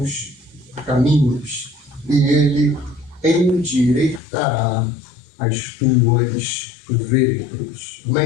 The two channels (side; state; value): right; drops out; at 4.2 s